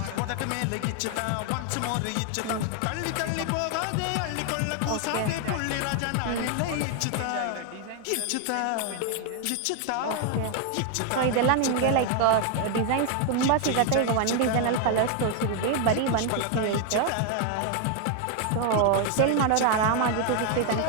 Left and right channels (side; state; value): both; different; correlation 0.00